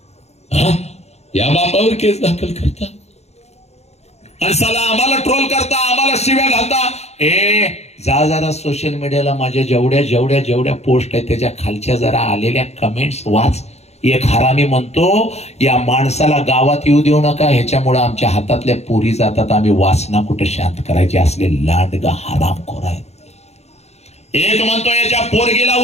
या बापावर केस दाखल करता आणि साला आम्हाला ट्रोल करता, आम्हाला शिव्या घालता. जा जरा सोशल मीडियाला माझ्या जेवढ्या पोस्ट आहेत त्याच्या खालच्या जरा आलेल्या कमेंट्स वाच. एक हरामी म्हणतो, या माणसाला गावात येऊ देऊ नका, ह्याच्यामुळे आमच्या हातातल्या पोरी जातात, आम्ही वासना कुठे शांत करायचे, असले लांडगा हरामखोर आहेत. एक म्हणतो, याच्या पोरगीला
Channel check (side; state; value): right; late; 0.31 ms